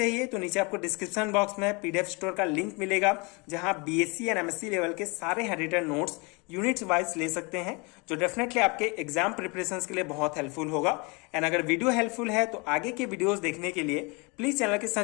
तो नीचे आपको डिस्क्रिप्शन बॉक्स में PDF स्टोर का लिंक मिलेगा, जहां BSc एंड MSc लेवल के सारे हैंडरिटन नोट्स यूनिट्स वाइज ले सकते हैं, जो डेफिनेटली आपके एग्जाम प्रिपरेशन के लिए बहुत हेल्पफुल होगा। एंड अगर वीडियो हेल्पफुल है तो आगे के वीडियोस देखने के लिए प्लीज चैनल के साथ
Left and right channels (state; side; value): quieter; right; 29.3 dB